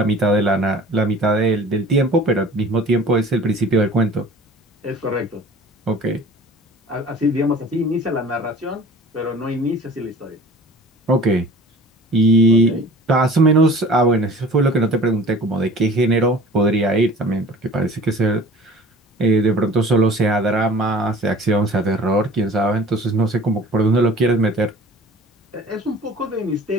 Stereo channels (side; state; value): both; normal; correlation 0.44